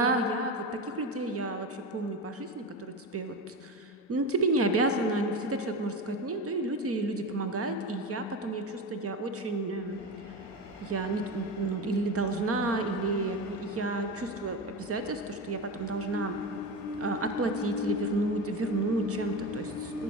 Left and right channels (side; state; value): both; normal; correlation 0.22